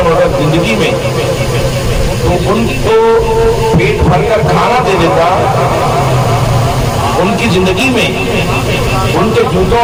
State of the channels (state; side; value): identical; both; correlation 1.00